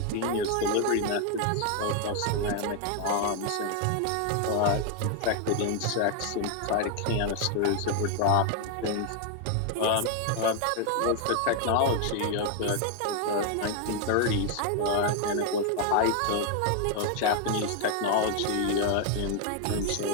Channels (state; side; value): different; both; correlation 0.00